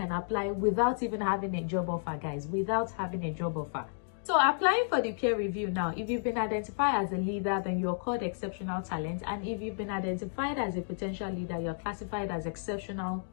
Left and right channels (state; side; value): silent; right; digital silence